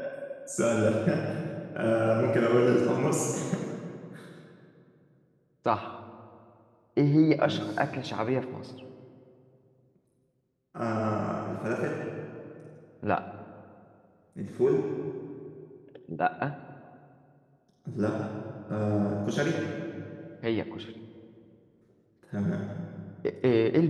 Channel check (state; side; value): identical; both; correlation 1.00